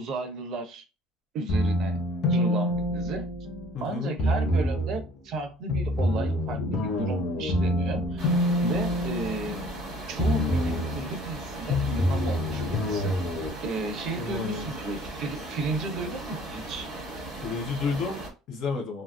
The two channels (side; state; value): both; normal; correlation 0.54